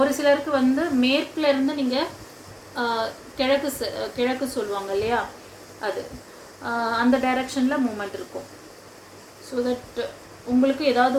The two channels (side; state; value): both; identical; correlation 1.00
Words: ஒரு சிலருக்கு வந்து மேற்குலேருந்து நீங்கள் கிழக்கு சொல்லுவாங்க இல்லையா, அது அந்த டைரக்ஷனில் மூமெண்ட் இருக்கும். ஸோ தட் உங்களுக்கு ஏதாவது